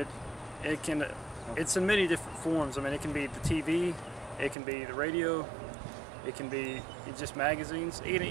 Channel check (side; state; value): left; drops out; at 4.5 s